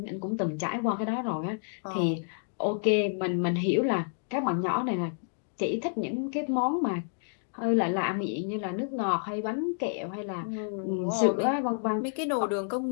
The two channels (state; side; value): silent; right; digital silence